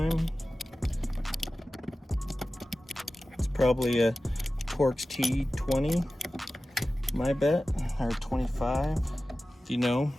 Probably a Torx T20, my bet, or 25. If you know,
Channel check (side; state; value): both; normal; correlation 0.95